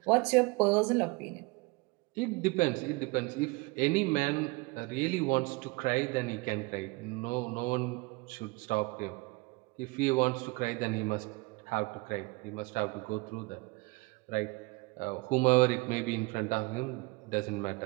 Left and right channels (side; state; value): left; quieter; 25.2 dB